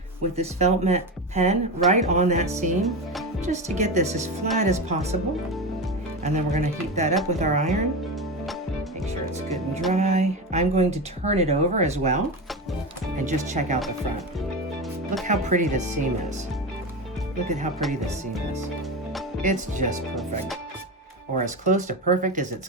with this felt mat pen right on that seam, just to get this as flat as possible. And then we're going to heat that up with our iron. Make sure it's good and dry. I'm going to turn it over as well and just check out the front. Look how pretty this seam is. Look at how pretty this seam is. It's just perfect, or as close to perfect as it's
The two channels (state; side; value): normal; both; correlation 0.21